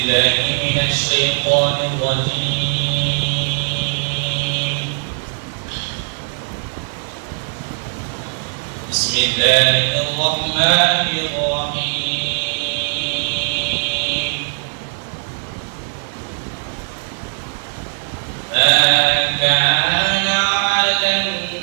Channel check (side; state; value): left; silent; 61 dB below the other